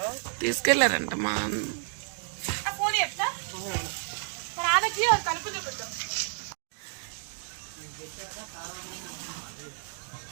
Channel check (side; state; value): left; silent; digital silence